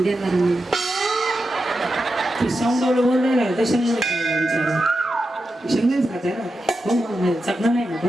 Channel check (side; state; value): both; normal; correlation 0.89